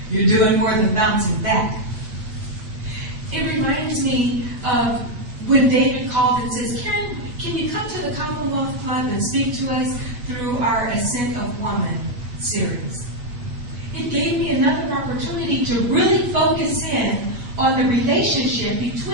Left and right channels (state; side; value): late; left; 8.3 ms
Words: you're doing more than bouncing back. It reminds me of when David called and says, Karen, can you come to the Commonwealth Club and speak to us through our Ascent of Woman series? It gave me another opportunity to really focus in on the relationship